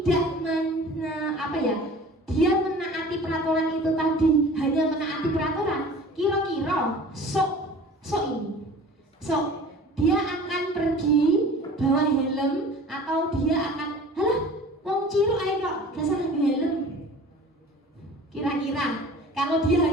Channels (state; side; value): normal; both; correlation 0.43